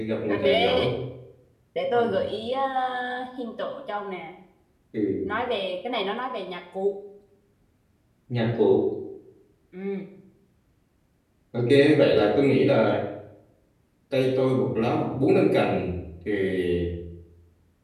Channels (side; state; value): both; identical; correlation 1.00